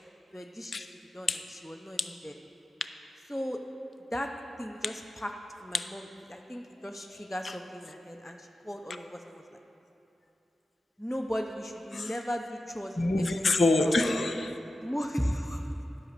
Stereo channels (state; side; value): normal; both; correlation 0.92